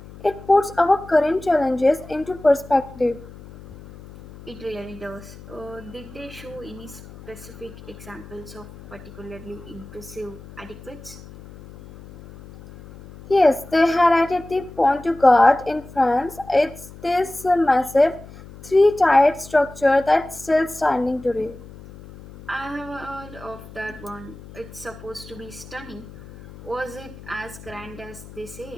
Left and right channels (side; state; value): left; noise; hum, 18 dB below the sound